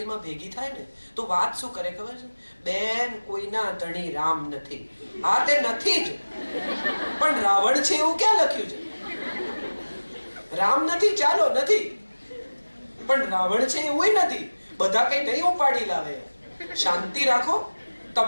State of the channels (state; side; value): inverted; both; correlation -1.00